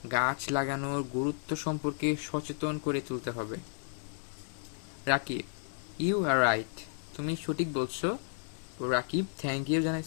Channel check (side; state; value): right; silent; 56 dB below the other